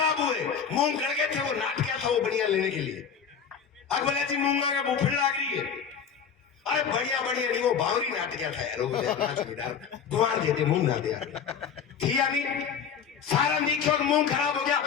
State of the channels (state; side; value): quieter; right; 7.0 dB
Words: हुए, मूंग गड़ गए थे, वो नाट गया था वो बढ़िया लेने के लिए, अब बोले जी मूंगा के बुफड़ लाग रही है, अरे बढ़िया बढ़िया नहीं, वो बावरी नाट गया था यार, गुआर देते मूंग ना दे थी या नहीं। सारा निक्षोभ मुंह खराब हो गया।